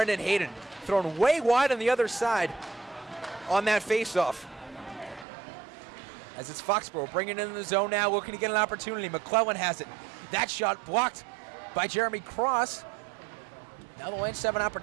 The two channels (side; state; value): left; drops out; at 5.2 s